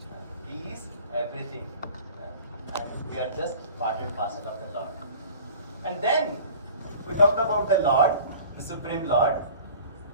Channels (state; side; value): inverted; both; correlation -0.44